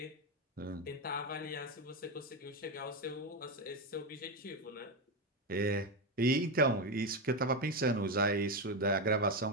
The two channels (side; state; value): both; normal; correlation 0.11